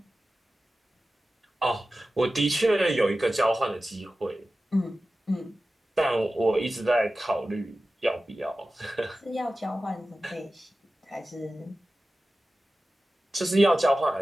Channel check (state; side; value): normal; both; correlation 0.95